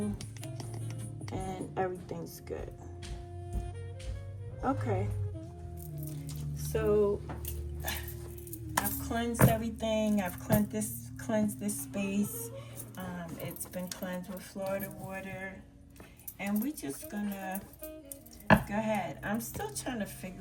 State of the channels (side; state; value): both; identical; correlation 1.00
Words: and everything's good. Okay, so I've cleansed everything. I've cleansed this space. It's been cleansed with Florida water, and we're just gonna go ahead. I'm still trying to